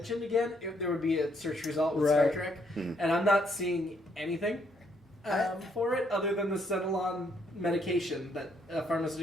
again, there would be a search result with Right. Star Trek. And I'm not seeing anything for it other than the Xenolon medication, that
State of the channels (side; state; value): both; normal; correlation 0.71